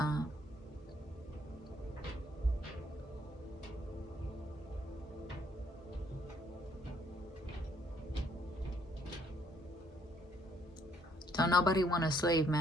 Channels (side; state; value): both; normal; correlation 0.67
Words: Don't nobody want a slave